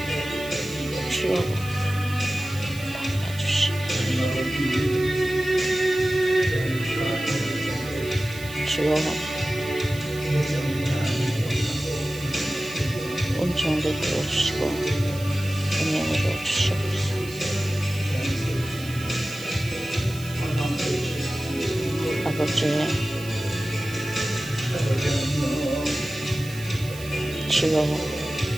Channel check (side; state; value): right; noise; hiss, 16 dB below the sound